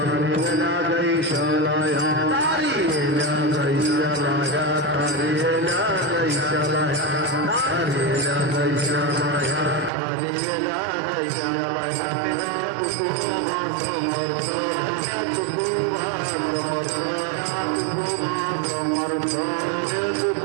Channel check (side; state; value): left; drops out; at 9.9 s